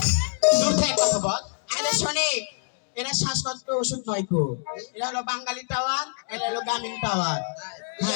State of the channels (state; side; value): silent; right; digital silence